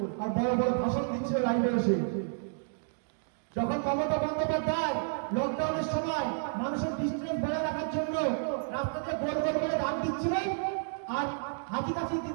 আর বড় বড় ভাষণ দিচ্ছিল লাইভে এসে। যখন মমতা বন্দ্যোপাধ্যায় লকডাউনের সময় মানুষের ডিস্টেন্স বজায় রাখার জন্য রাস্তাতে গোল গোল করে দাম দিচ্ছিলেন, আর হাতি কাছি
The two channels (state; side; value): silent; left; digital silence